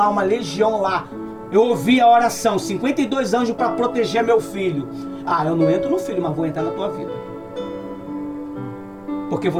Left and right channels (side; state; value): both; identical; correlation 1.00